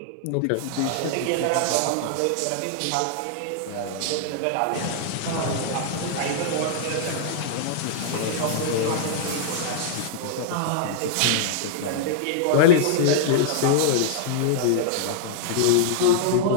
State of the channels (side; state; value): both; different; correlation -0.01